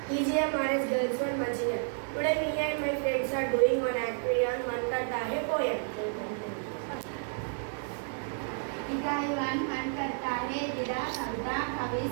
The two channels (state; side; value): silent; left; 57 dB below the other